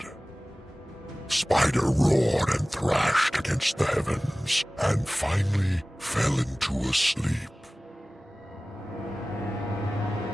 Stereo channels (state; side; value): normal; both; correlation 0.98